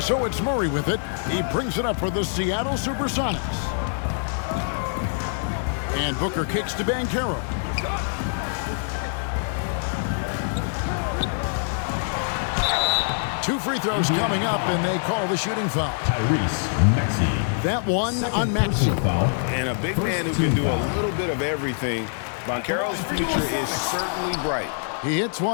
so it's Murray with it. He brings it up for the Seattle Supersonics. And Booker kicks to Banchero. Two free throws coming up, and they call the shooting foul. Tyrese Maxey. That one on Maxey. And a big man who can do a little bit of everything. Banchero's future is certainly bright. He hits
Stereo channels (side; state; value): right; silent; digital silence